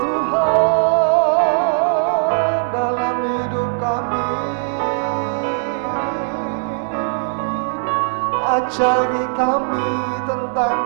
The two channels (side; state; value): left; silent; digital silence